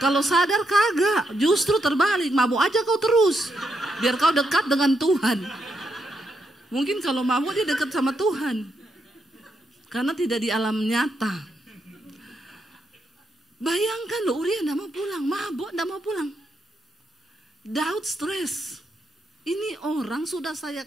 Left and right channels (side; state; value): both; normal; correlation 0.80